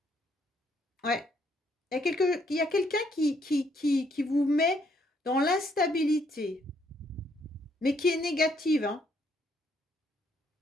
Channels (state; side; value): normal; both; correlation 0.71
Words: Ouais. Il y a quelqu'un qui vous met dans l'instabilité, mais qui est négative, hein.